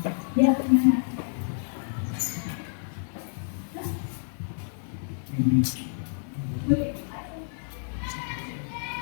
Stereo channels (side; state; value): right; silent; 58 dB below the other